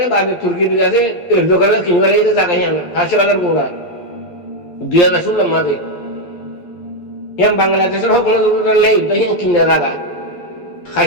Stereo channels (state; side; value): late; right; 11 ms